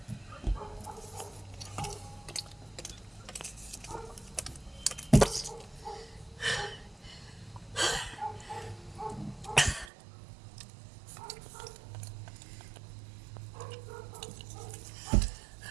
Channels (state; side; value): drops out; left; at 9.9 s